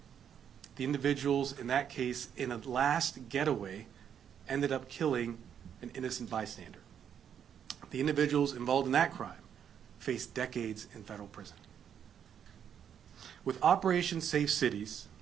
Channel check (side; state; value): left; quieter; 8.6 dB